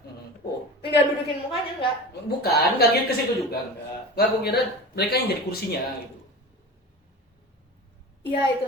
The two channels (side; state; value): both; normal; correlation 0.32